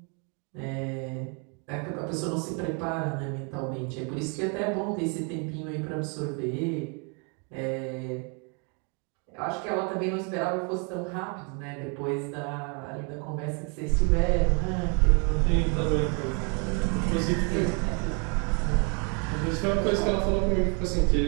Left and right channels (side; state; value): left; quieter; 36.3 dB